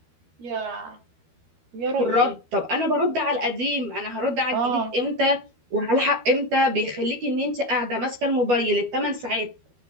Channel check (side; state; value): left; late; 12 ms